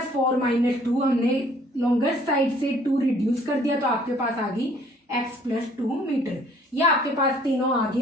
4 minus 2, हमने लॉन्गेस्ट साइड से 2 रिड्यूस कर दिया, तो आपके पास आ गई एक्स प्लस 2 मीटर। ये आपके पास तीनों आ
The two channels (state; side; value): normal; both; correlation 0.59